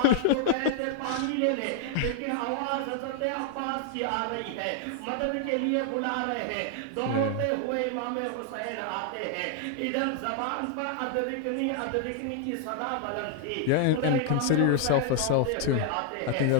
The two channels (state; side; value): different; both; correlation 0.00